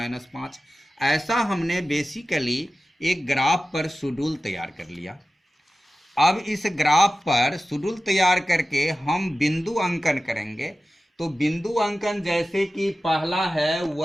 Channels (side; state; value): both; normal; correlation 0.95